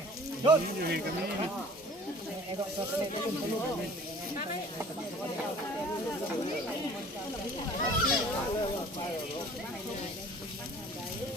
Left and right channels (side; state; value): both; normal; correlation 0.49